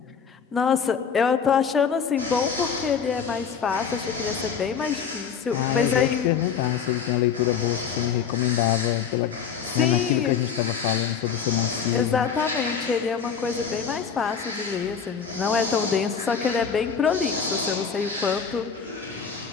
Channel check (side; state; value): right; quieter; 6.9 dB